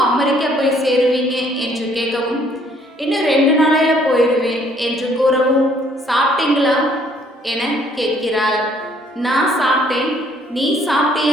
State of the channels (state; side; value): normal; both; correlation 0.63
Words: அமெரிக்கா போய் சேருவீங்க என்று கேட்கவும், இன்னும் 2 நாளையில போயிடுவேன் என்று கூறவும், சாப்பிட்டீங்களா என கேட்கிறாள். நான் சாப்பிட்டேன், நீ